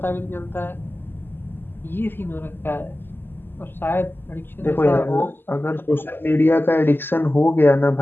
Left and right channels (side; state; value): right; late; 0.099 ms